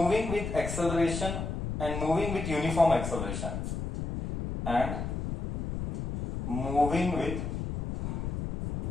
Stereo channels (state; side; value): noise; left; rumble, 4 dB below the sound